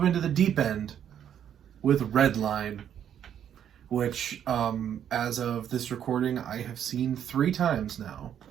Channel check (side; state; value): left; quieter; 9.5 dB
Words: into the deep end with Redline, which, as of this recording, I have seen 3 times now.